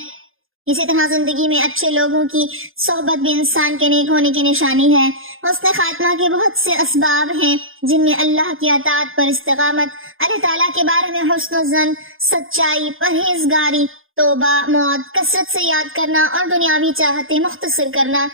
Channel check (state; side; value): late; left; 0.59 ms